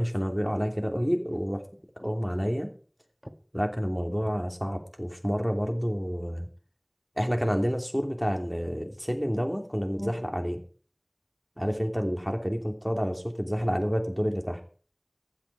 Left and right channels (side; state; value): both; identical; correlation 1.00